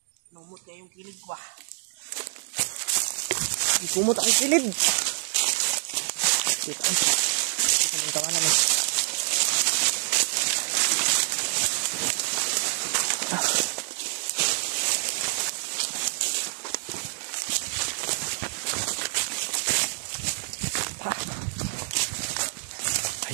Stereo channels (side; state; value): left; silent; digital silence